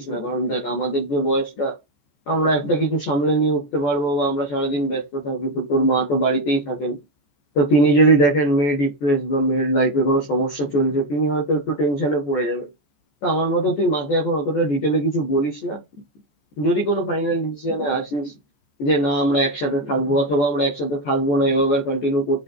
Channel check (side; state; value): right; late; 14 ms